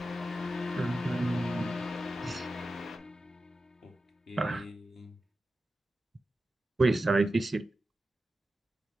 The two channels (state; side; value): normal; both; correlation 0.92